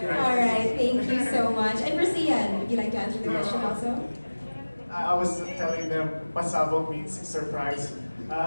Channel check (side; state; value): both; inverted; correlation -1.00